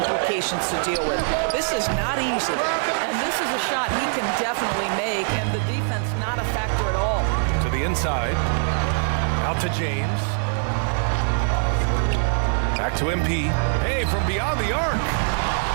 to deal with. This is not easy. And this is a shot he can definitely make, and the defense not a factor at all. To the inside. Out to James. Back to MP. Hey, from beyond the arc.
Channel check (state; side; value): silent; left; digital silence